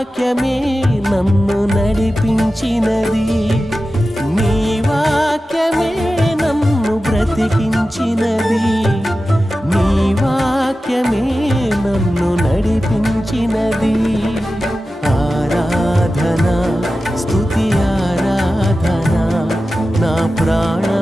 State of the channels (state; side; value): normal; both; correlation 0.94